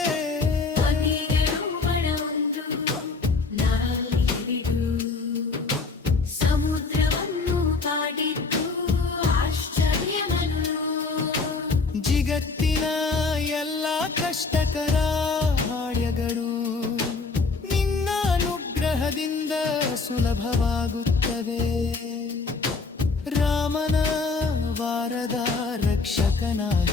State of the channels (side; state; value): right; quieter; 4.2 dB